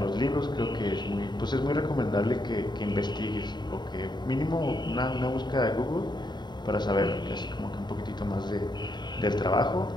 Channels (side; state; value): right; late; 0.21 ms